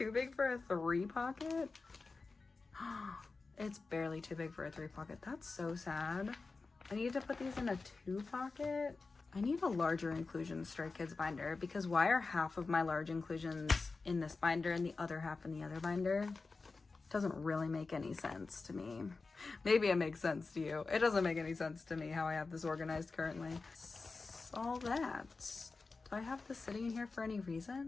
big for a 3 pocket. It's barely too big for a 3 pocket. That's so sad. I need to put these in a 2 pocket. I need a larger inclusion Stray Kids binder because why are half of my large inclusions in this binder and the other half in the other binder? Doesn't really make any sense to me. Maybe it makes sense to you. It doesn't make any sense to me how I have this organized currently. All that. Do I have this sitting in here for any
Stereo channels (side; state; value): right; quieter; 4.0 dB